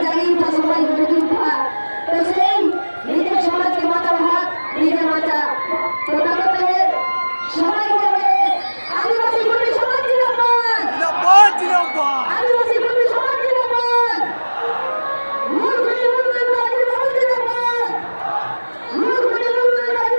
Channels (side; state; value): both; inverted; correlation -1.00